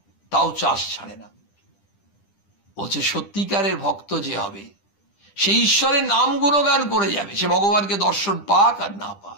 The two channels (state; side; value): late; right; 10 ms